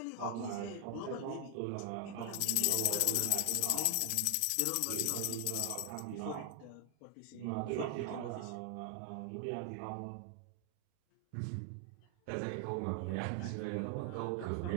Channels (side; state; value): both; different; correlation 0.00